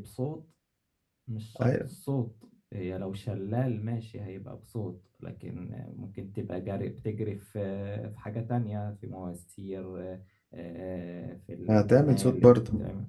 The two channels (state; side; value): identical; both; correlation 1.00